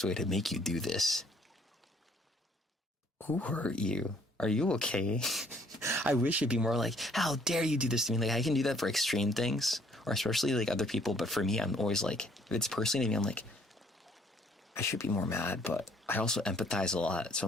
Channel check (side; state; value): both; normal; correlation 0.62